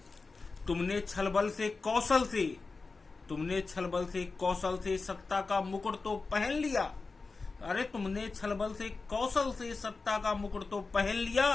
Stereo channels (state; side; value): quieter; right; 4.1 dB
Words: तुमने छलबल से कौशल से सत्ता का मुकुट तो पहन लिया। अरे तुमने छलबल से कौशल से सत्ता का मुकुट तो पहन लिया,